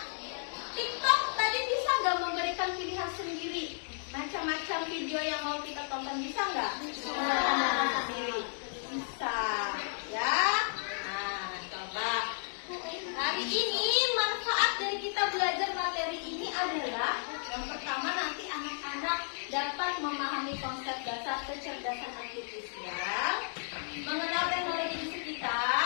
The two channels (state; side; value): silent; right; digital silence